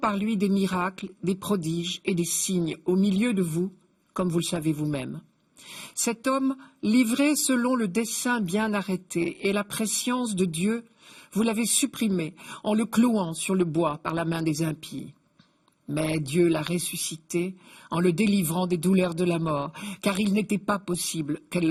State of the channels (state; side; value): identical; both; correlation 1.00